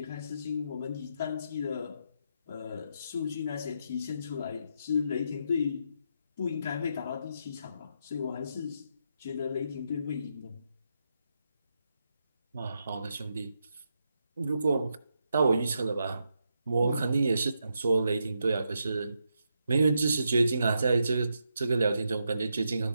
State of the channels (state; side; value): inverted; both; correlation -0.82